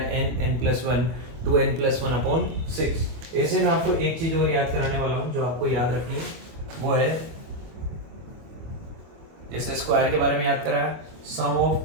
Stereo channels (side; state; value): left; late; 25 ms